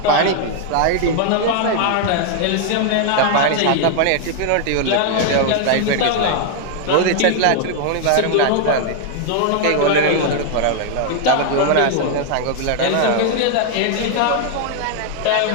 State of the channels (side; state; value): both; different; correlation 0.00